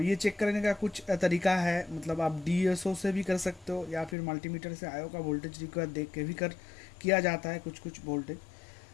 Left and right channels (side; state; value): right; drops out; at 4.2 s